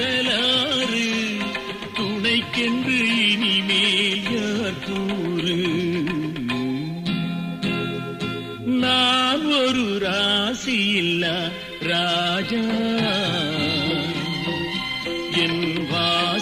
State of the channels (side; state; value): both; identical; correlation 1.00